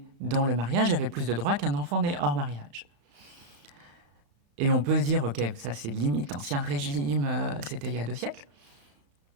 dans le mariage avait plus de droits qu'un enfant né hors mariage. Et on peut se dire, ok, ça c'est limite ancien régime, c'était il y a 2 siècles.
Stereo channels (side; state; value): left; late; 34 ms